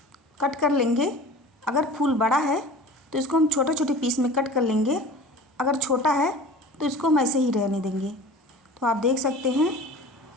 कट कर लेंगे। अगर फूल बड़ा है तो इसको हम छोटे छोटे पीस में कट कर लेंगे, अगर छोटा है तो इसको हम ऐसे ही रहने देंगे। तो आप देख सकते हैं।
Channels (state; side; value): normal; both; correlation 0.40